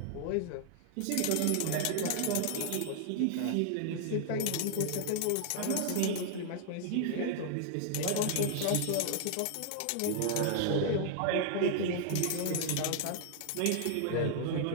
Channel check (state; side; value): different; both; correlation 0.00